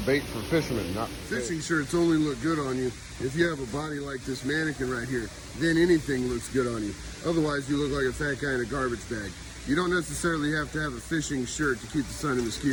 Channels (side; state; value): both; identical; correlation 1.00